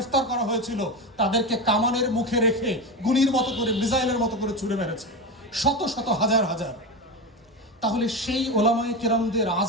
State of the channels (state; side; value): normal; both; correlation 0.20